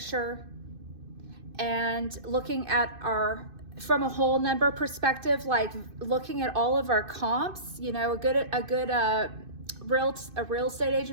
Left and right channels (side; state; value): left; late; 2.6 ms